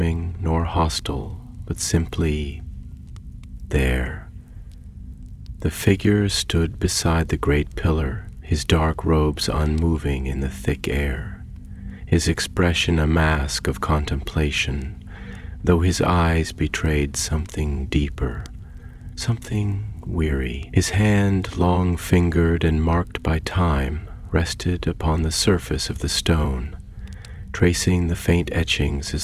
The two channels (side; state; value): both; identical; correlation 1.00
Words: nor hostile, but simply there. The figure stood beside the great pillar, his dark robes unmoving in the thick air, his expression a mask of contemplation, though his eyes betrayed something deeper, something weary. His hand, long-fingered and marked by time, rested upon the surface of the stone, tracing the faint etchings